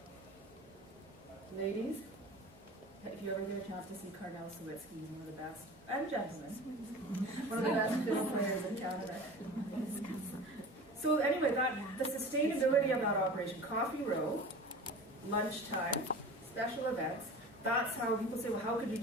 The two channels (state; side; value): normal; both; correlation 0.37